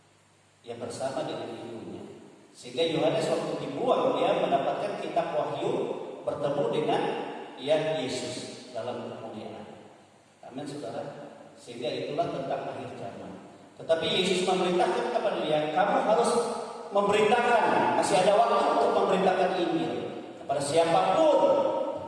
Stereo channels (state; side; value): identical; both; correlation 1.00